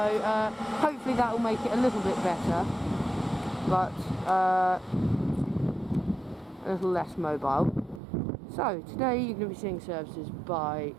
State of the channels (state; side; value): drops out; left; at 8.0 s